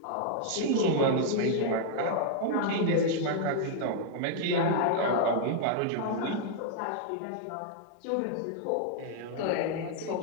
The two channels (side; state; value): both; different; correlation -0.01